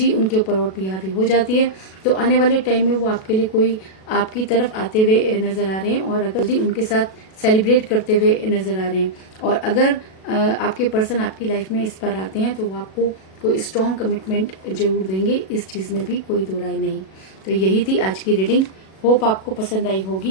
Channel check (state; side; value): late; right; 37 ms